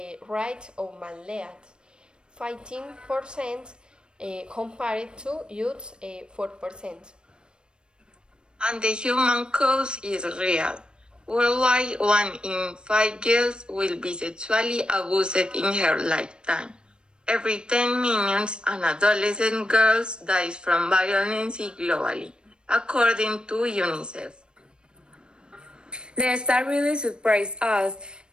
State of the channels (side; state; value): left; late; 0.052 ms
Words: rate of male leads, 15% compared to youths 4%. And the human cost is real. Worldwide, 1 in 5 girls will be sexually abused in her lifetime. Every 10 minutes, an adolescent girl dies from violence globally, according to UNICEF. The star really surprised us.